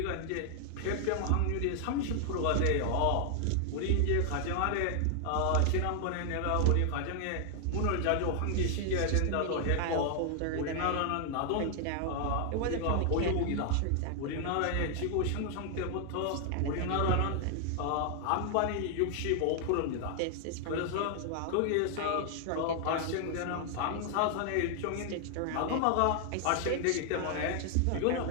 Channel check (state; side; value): different; both; correlation 0.00